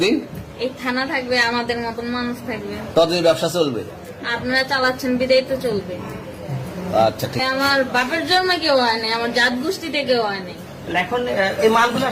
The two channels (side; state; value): both; identical; correlation 1.00